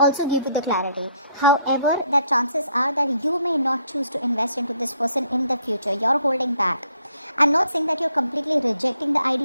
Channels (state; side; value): inverted; both; correlation -0.69